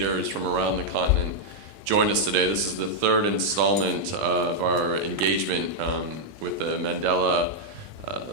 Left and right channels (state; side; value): late; left; 20 ms